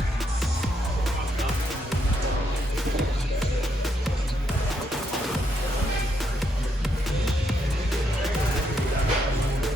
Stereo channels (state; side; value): normal; both; correlation 0.77